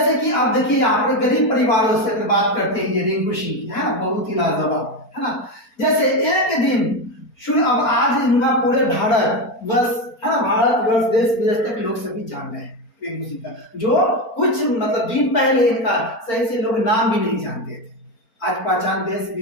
कि आप देखिए यहाँ पर गरीब परिवारों से बात करते हैं, ये रिंकू सिंह की, है ना, बहुत ही लाजवाब, है ना। जैसे एक दिन अब आज इनका पूरे भारत वर्ष, है ना, भारत वर्ष देश विदेश तक लोग सभी जान रहे हैं रिंकू सिंह का, जो कुछ मतलब दिन पहले इनका सही से लोग नाम भी नहीं जानते थे, आज पहचान देश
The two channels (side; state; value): right; late; 4.4 ms